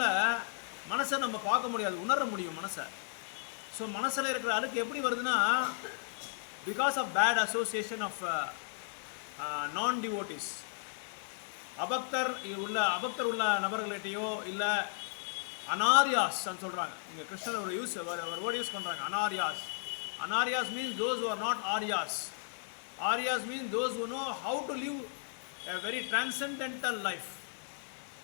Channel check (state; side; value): silent; right; 55 dB below the other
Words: மனசை நம்ம பார்க்க முடியாது, உணர முடியும் மனசை. ஸோ மனசில் இருக்கிற அழுக்கு எப்படி வருதுன்னா, because of bad association of non devotees. அபக்தர் உள்ள நபர்கள்கிட்டையோ இல்லை அனாரியாஸ் சொல்கிறாங்க. இங்கே கிருஷ்ணர் ஒரு வேர்டு யூஸ் பண்ணுறாங்க, anaryas. Anaryas means those who are not aryas. Aryas means those who know how to live a very transcendental life.